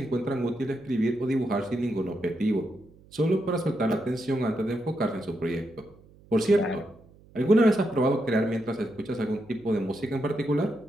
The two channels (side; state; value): right; noise; hum, 26 dB below the sound